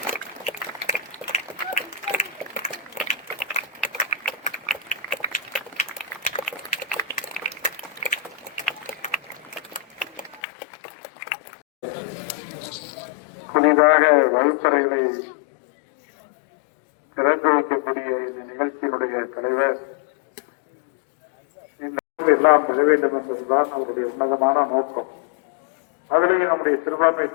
புதிதாக வகுப்பறைகளை திறந்து வைக்கக்கூடிய இந்த நிகழ்ச்சியினுடைய தலைவர் எல்லாம் பெற வேண்டும் என்பதுதான் அவருடைய உன்னதமான நோக்கம். அதிலேயும் நம்முடைய சிறுபான்மை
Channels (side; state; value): right; drops out; at 10.4 s